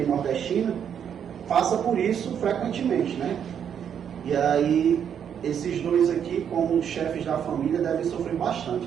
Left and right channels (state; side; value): quieter; left; 8.4 dB